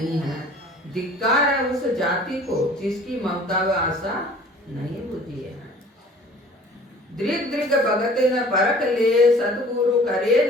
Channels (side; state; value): both; normal; correlation 0.49